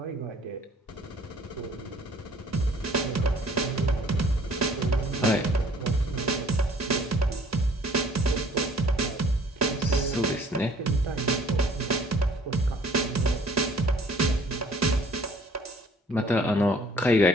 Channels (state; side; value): normal; both; correlation 0.56